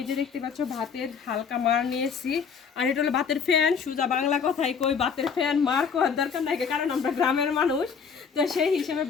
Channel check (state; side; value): quieter; right; 6.3 dB